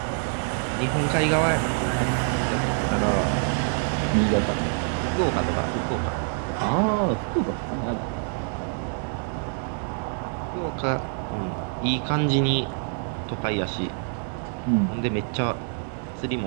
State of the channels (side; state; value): left; silent; 56 dB below the other